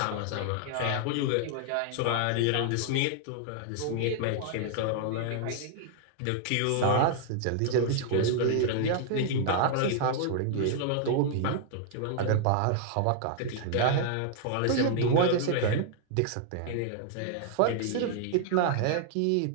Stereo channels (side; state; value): both; different; correlation 0.00